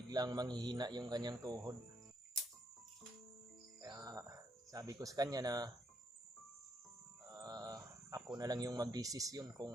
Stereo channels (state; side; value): normal; both; correlation 0.75